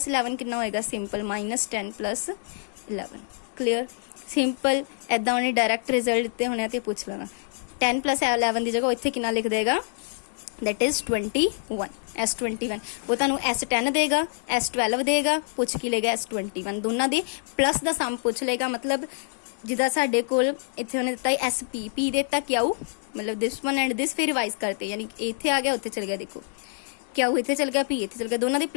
11 कितना होएगा, सिंपल -10 + 11। क्लियर, सिंपल ऐदा उन्हें डायरैक्ट रिजल्ट दिते होने तो पूछ लेना। 10 + 11 की जगह इत्थे कितना लिख देगा, दैट इज 21। S21 वो तुहानू S10 देगा, S12 देगा, पूछ की लेगा S21, दोनों दे प्लस का सम पूछ लेगा। मतलब जिदा साडे कोल इत्थे उन्हें दिता SP, P देता क्यू, मतलब दिस वन एंड दिस, फिर रिवाइज करते, यानी इत्थे आ गया उत्थे चल गया, देखो क्यू इत्थे चल गया, P इत्थे चल गया, दोनों दे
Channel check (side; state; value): right; silent; 61 dB below the other